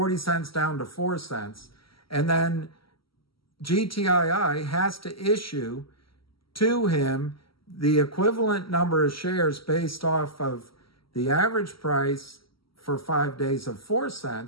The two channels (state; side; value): late; right; 0.75 ms